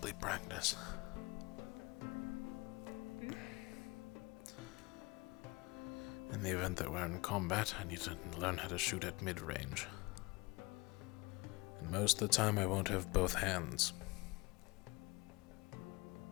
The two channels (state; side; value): quieter; right; 24.3 dB